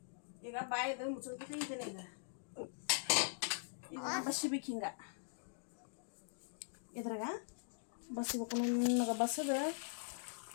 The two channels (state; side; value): silent; right; digital silence